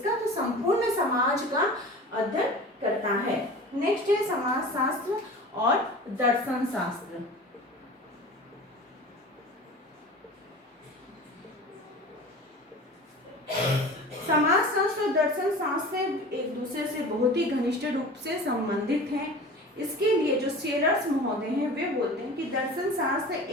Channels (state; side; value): normal; both; correlation 0.37